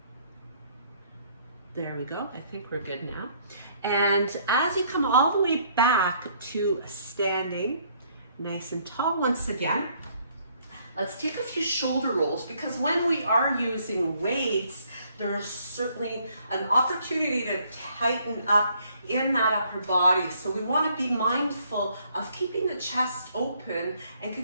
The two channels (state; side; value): inverted; both; correlation -0.65